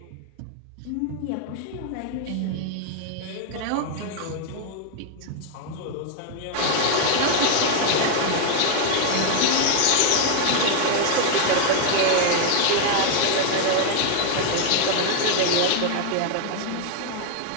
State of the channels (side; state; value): both; different; correlation 0.00